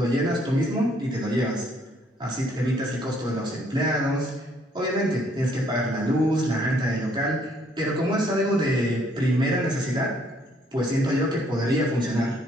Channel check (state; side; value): normal; both; correlation 0.66